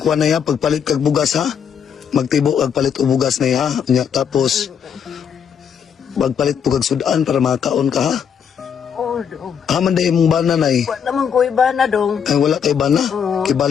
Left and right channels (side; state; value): right; quieter; 7.6 dB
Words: kuha na ya pagpalit kag bugas ha. Magtibo kag palit og bugas na ya. Nya tapos magpalit po kag sudan para makaon ka ha. Oh, Dong. Haman day mong bana Nay. Wa naman ko iba na, Dong. Ay wala kay bana.